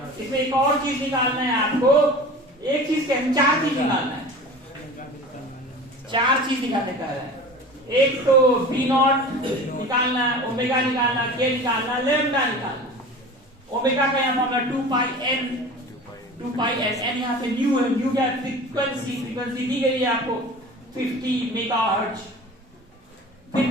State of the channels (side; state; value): both; normal; correlation 0.37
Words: इसमें एक और चीज निकालना है आपको एक चीज क्या चार चीज निकालना है चार चीज निकालने का है एक तो V0 निकालना है ओमेगा निकालना K निकालना लैम्डा निकालना ओमेगा का यहाँ फॉर्मूला 2 pi n यहाँ पे न्यू है न्यू क्या फ्रीक्वेंसी दी गई है आपको 50 मेगाहर्ट्ज फिर